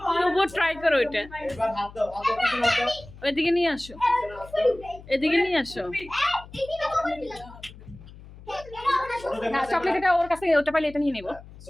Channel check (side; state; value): left; noise; hum, 19 dB below the sound